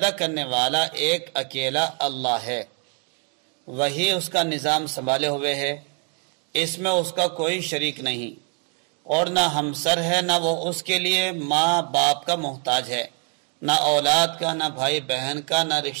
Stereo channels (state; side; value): quieter; left; 33.8 dB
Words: کرنے والا ایک اکیلا اللہ ہے، وہی اس کا نظام سنبھالے ہوئے ہے، اس میں اس کا کوئی شریک نہیں، اور نہ ہمسر ہے، نہ وہ اس کے لیے ماں باپ کا محتاج ہے، نہ اولاد کا، نہ بھائی بہن کا، نہ